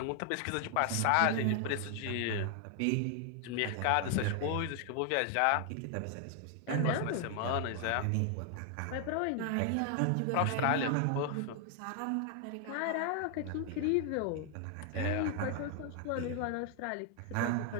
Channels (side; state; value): both; different; correlation 0.00